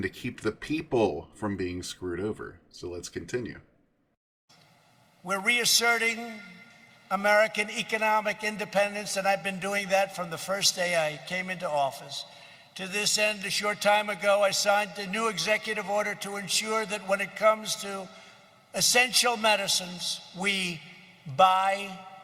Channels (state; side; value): identical; both; correlation 1.00